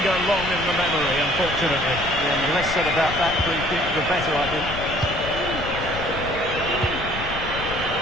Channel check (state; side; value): noise; left; rumble, 10 dB below the sound